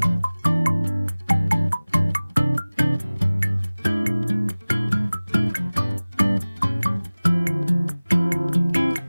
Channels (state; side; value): inverted; both; correlation -0.99